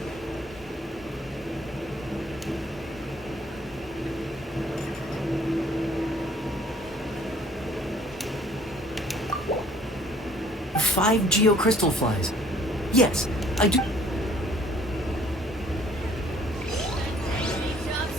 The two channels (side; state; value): both; normal; correlation 0.58